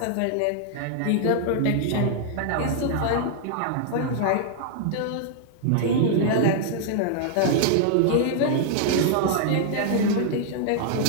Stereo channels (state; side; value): different; both; correlation -0.01